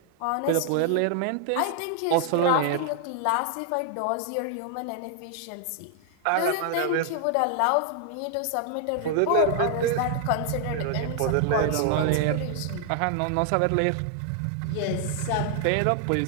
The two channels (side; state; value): both; different; correlation 0.00